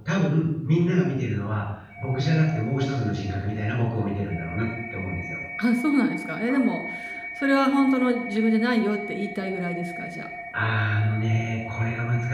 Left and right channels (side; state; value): both; identical; correlation 1.00